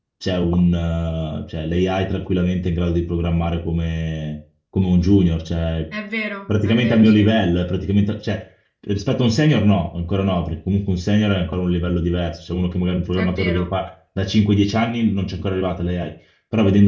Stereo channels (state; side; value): identical; both; correlation 1.00